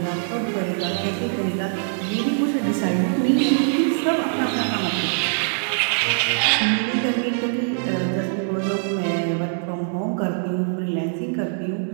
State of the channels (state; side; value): silent; left; digital silence